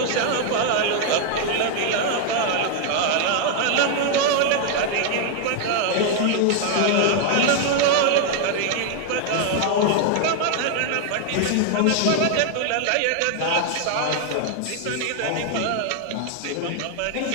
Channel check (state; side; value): different; both; correlation 0.00